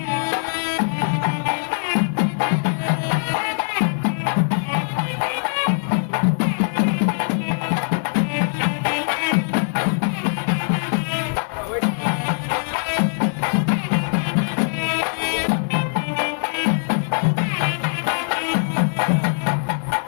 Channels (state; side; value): silent; right; digital silence